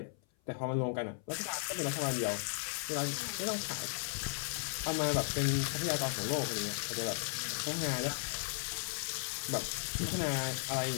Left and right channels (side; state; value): right; silent; 54 dB below the other